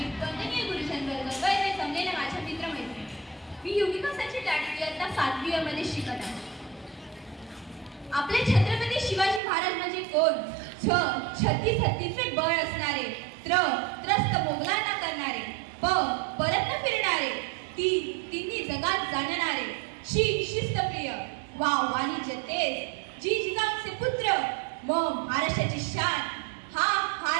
वंदनीय गुरुजन वर्ग वैद्य जमलेल्या माझ्या मित्रमैत्रिणी, मी युविकासाची लाडकी इयत्ता 7वी मध्ये शिकत आहे. आपले छत्रपती शिवाजी महाराज म्हणजे कोण? छत्तीस हत्तीचे बळ असणारे, त्रस्त मोगलांना करणारे, परत न फिरणारे, तिन्ही जगात जाणणारे, शिस्तप्रिय, वाणिज्य तेज, जिजाऊचे पुत्र, महाराष्ट्राची शान,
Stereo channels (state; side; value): drops out; left; at 9.4 s